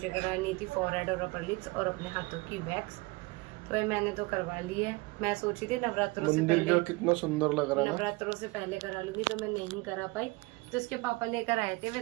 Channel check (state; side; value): quieter; left; 24.7 dB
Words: करानी थी फॉरहेड और अपर लिप्स और अपने हाथों की वैक्स। तो मैंने तो करवा ली है। मैं सोची थी नवरात्रों से पहले, कितना सुंदर लग रहा है, नवरात्रों से पहले करा लूंगी, तो मैं नहीं करा पाई। तो इसके पापा लेकर आए थे